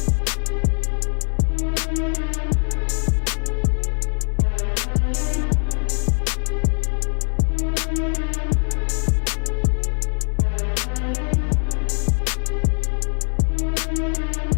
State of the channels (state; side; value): silent; right; 64 dB below the other